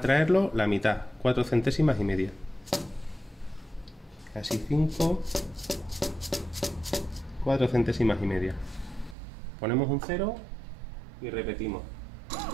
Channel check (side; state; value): left; drops out; at 9.2 s